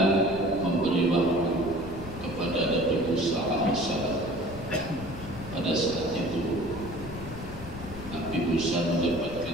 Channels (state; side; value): noise; left; rumble, 11 dB below the sound